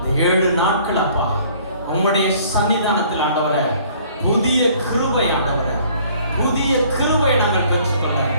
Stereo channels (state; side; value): inverted; both; correlation -0.56